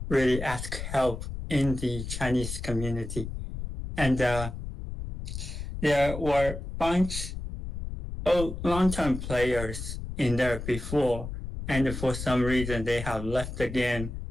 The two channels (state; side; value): noise; left; rumble, 7 dB below the sound